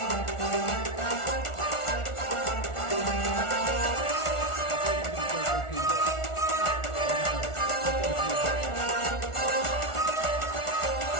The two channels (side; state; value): right; late; 1.4 ms